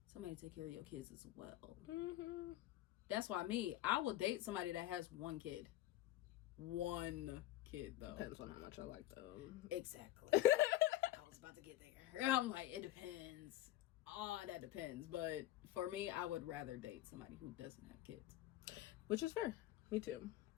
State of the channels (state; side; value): quieter; right; 14.4 dB